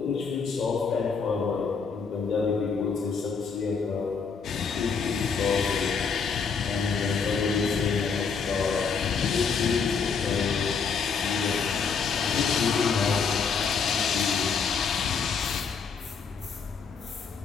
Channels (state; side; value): quieter; right; 5.7 dB